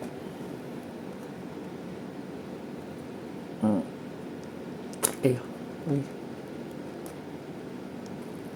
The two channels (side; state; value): both; identical; correlation 1.00